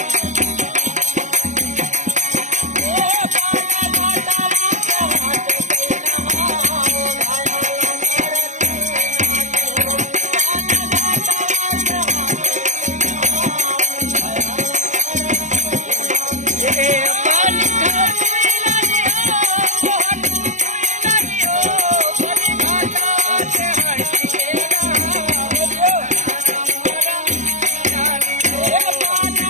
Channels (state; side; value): late; left; 0.35 ms